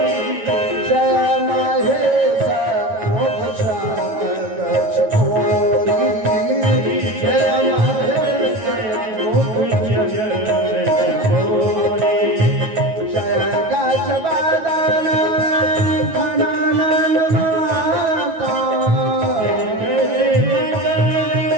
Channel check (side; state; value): left; late; 9.2 ms